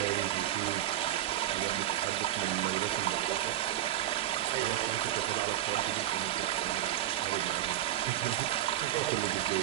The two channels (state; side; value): quieter; left; 13.2 dB